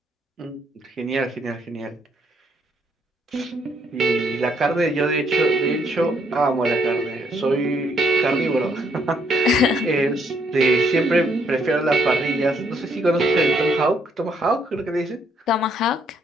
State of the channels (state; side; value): normal; both; correlation 0.70